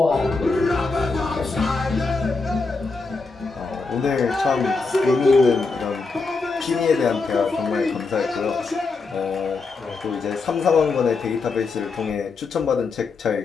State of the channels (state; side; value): quieter; right; 4.1 dB